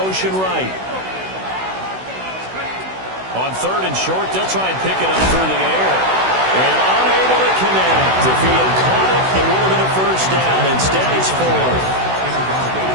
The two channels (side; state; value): left; late; 16 ms